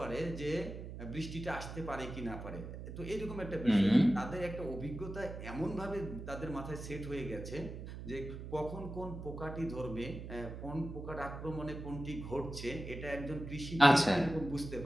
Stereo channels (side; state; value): right; noise; hum, 9 dB below the sound